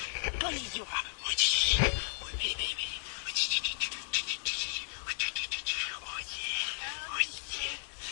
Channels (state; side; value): silent; right; 55 dB below the other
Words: Konnichiwa. Oh, baby. Oh,